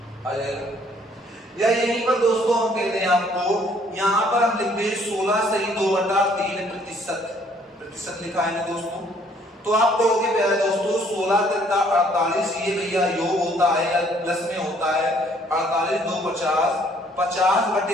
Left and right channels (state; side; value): normal; both; correlation 0.62